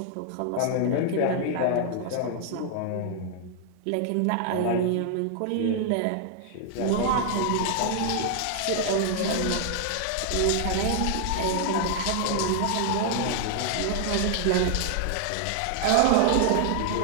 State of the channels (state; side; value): different; both; correlation 0.00